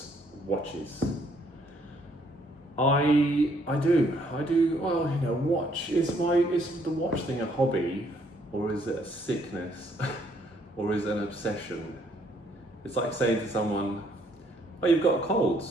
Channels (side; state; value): both; normal; correlation 0.67